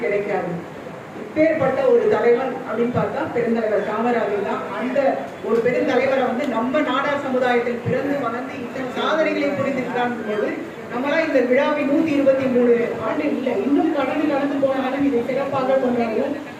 கிடைக்காது. இப்பேற்பட்ட ஒரு தலைவர் அப்படின்னு பார்த்தா பெருந்தலைவர் காமராஜர் தான். அந்த ஒரு பெருந்தலைவரை நம்ம நாடார் சமுதாயத்தில் பிறந்து வளர்ந்து இத்தனை சாதனைகளை புரிந்திருக்காங்க போது நம்மளாம் இந்த விழாவின் 123 ஆண்டு இல்லை, இன்னும் கடந்து போனாலும் இதை சிறப்பாக கொண்டாடுவோம்.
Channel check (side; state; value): both; identical; correlation 1.00